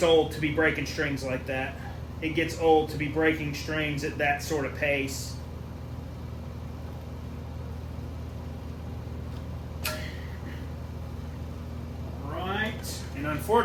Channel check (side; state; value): both; identical; correlation 1.00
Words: old to be breaking strings like that. It gets old to be breaking strings at that sort of pace. Right, and